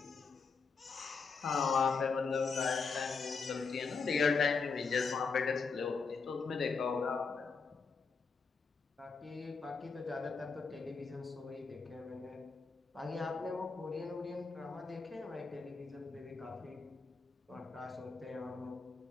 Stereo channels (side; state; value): right; quieter; 4.9 dB